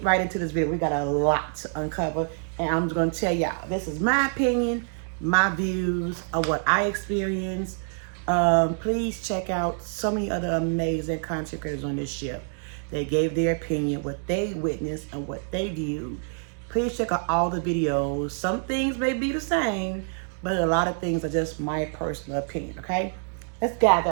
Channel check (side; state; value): left; silent; 59 dB below the other